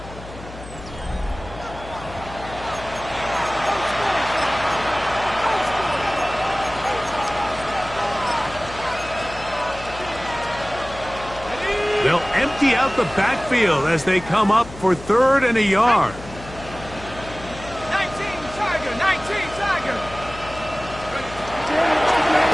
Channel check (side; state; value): left; noise; hum, 15 dB below the sound